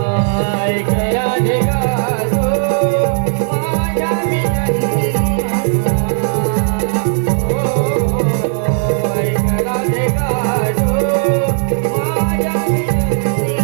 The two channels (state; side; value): silent; left; digital silence